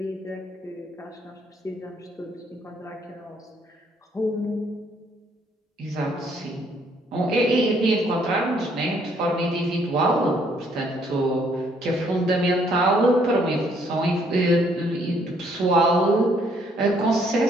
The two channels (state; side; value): normal; both; correlation 0.66